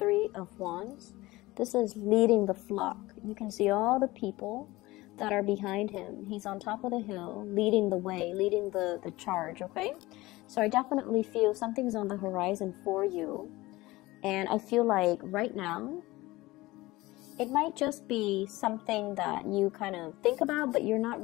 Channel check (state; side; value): quieter; right; 19.6 dB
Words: of Wands. This is leading the flock. You can see all the people that are behind him. He's on top of the hill, leading the way, leading the charge, okay? So I definitely feel something's on the horizon for you. And I feel like right now, it might just be something that you kind of think about, but you're not